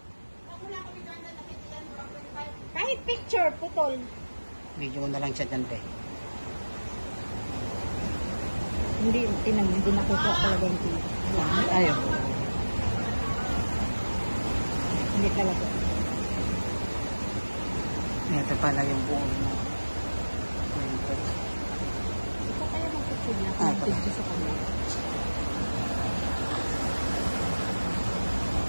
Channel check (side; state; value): both; inverted; correlation -1.00